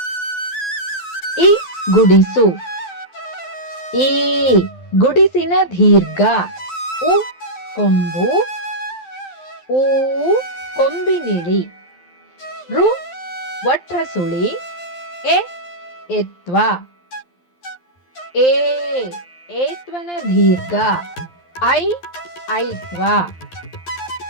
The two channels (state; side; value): late; right; 12 ms